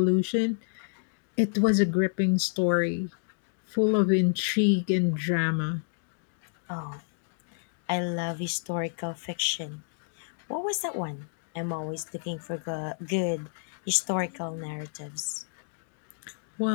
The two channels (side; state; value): right; silent; digital silence